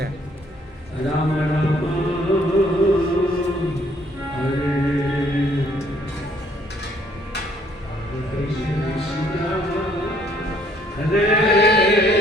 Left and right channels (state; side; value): normal; both; correlation 0.64